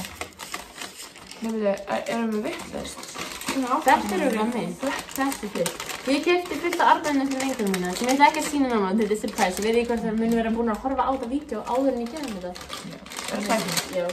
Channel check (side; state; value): both; identical; correlation 1.00